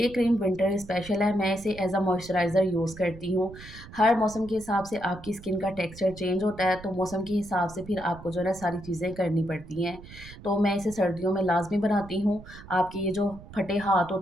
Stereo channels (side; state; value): right; noise; rumble, 17 dB below the sound